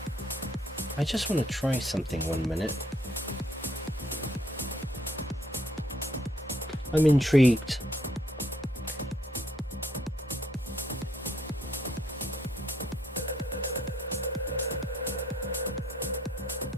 I just want to try something 1 minute. I'm intrigued.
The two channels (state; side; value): normal; both; correlation 0.68